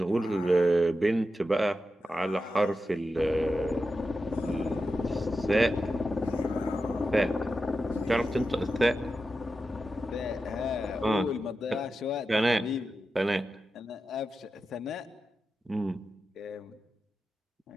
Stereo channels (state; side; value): normal; both; correlation 0.91